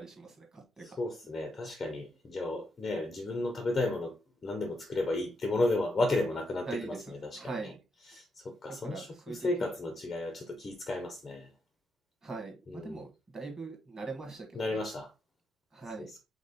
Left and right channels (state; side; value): normal; both; correlation 0.82